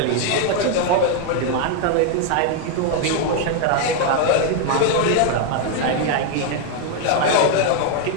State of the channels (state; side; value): different; both; correlation 0.01